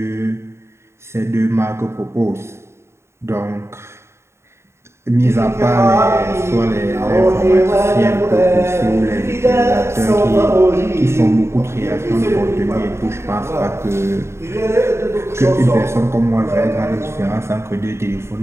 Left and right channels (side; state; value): left; late; 0.13 ms